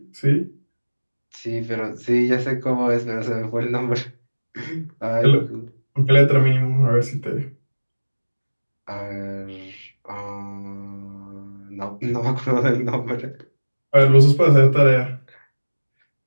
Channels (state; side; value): inverted; both; correlation -1.00